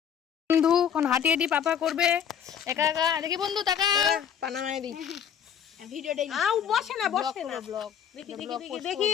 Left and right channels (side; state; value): right; quieter; 8.5 dB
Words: বন্ধু এখন হাঁটি হাঁটি পাপা করবে একা একা। দেখি বন্ধু টাকা পানামায় দি ভিডিওটাই বসে না ব্লগ দেখি